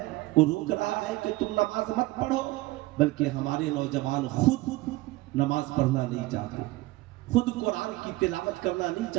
وہ روک رہا ہے کہ تم نماز مت پڑھو، بلکہ ہمارے نوجوان خود نماز پڑھنا نہیں چاہتے، خود قرآن کی تلاوت کرنا نہیں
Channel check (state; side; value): quieter; left; 19.4 dB